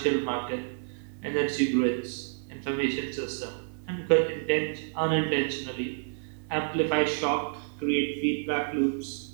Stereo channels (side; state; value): left; silent; digital silence